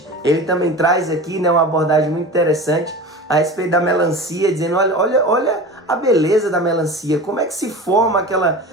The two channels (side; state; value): both; normal; correlation 0.32